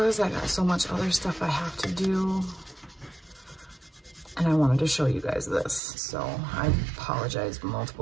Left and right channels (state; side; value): drops out; left; at 5.8 s